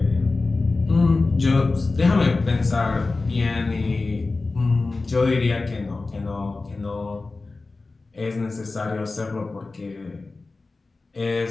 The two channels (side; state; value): right; quieter; 3.6 dB